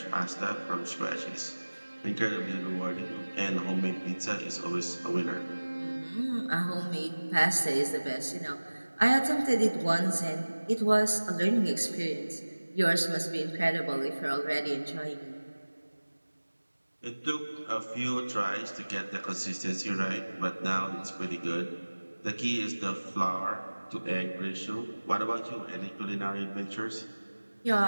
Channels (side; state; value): both; inverted; correlation -1.00